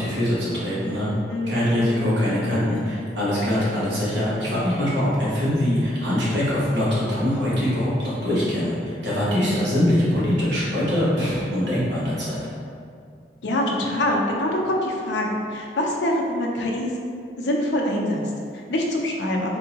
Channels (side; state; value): both; normal; correlation 0.65